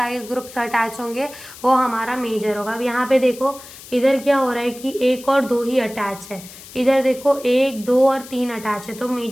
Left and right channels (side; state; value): left; noise; hiss, 17 dB below the sound